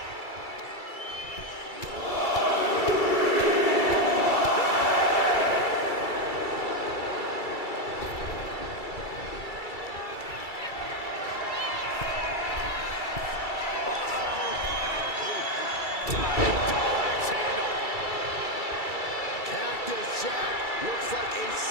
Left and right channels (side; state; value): right; late; 2.3 ms